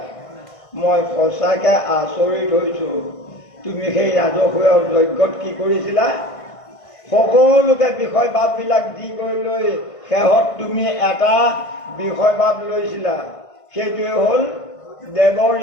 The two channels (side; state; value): right; late; 1.5 ms